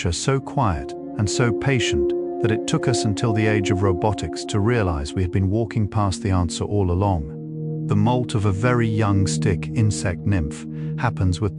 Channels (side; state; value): both; identical; correlation 1.00